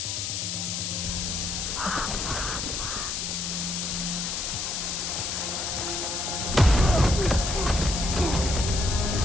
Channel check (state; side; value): noise; left; hiss, 2 dB below the sound